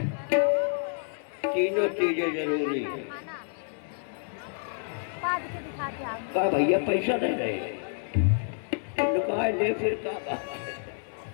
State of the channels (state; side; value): silent; right; 59 dB below the other